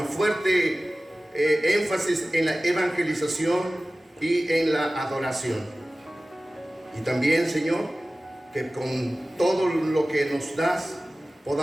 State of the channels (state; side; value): normal; both; correlation 0.97